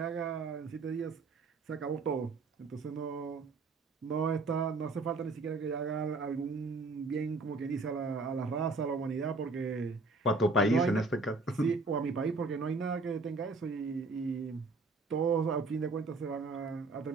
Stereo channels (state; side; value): quieter; left; 3.6 dB